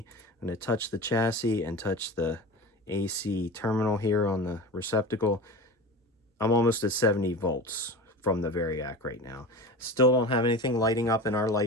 I'm going to touch the chassis and touch the AC terminal here on the receptacle. I'm almost at 70 volts from the Variac right now. Still don't have anything lighting up in our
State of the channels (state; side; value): normal; both; correlation 0.31